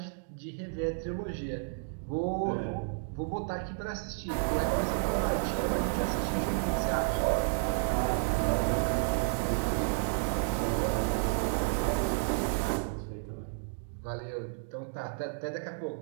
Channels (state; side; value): silent; left; digital silence